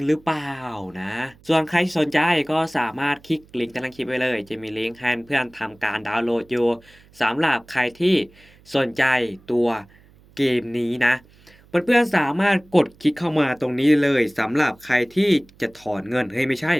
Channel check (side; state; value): right; noise; hum, 28 dB below the sound